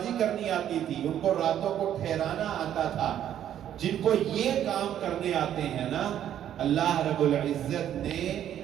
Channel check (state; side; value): quieter; left; 10.6 dB